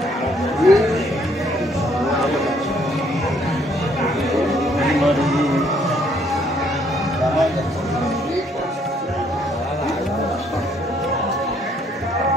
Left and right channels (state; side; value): normal; both; correlation 0.66